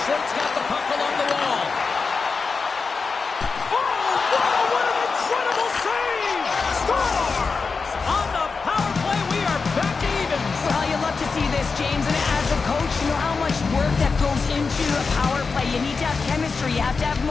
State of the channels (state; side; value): quieter; right; 4.7 dB